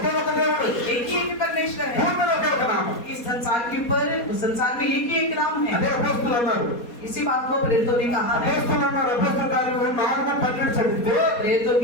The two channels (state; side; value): late; right; 4.2 ms